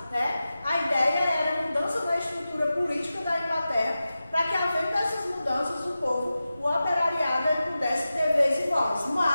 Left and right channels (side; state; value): both; inverted; correlation -0.94